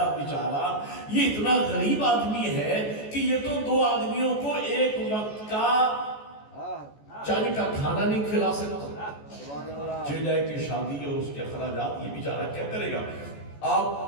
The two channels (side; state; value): right; late; 14 ms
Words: بیچارہ یہ اتنا غریب آدمی ہے کہ یہ تو دو آدمیوں کو ایک وقت کا چاند کا کھانا نہیں کھلا سکتا، چل جائے کہ شادی اور اس کے اخراجات یہ بیچارہ کیا کرے گا۔